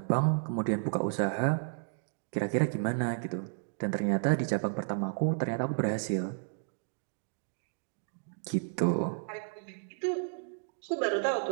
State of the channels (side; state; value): left; silent; digital silence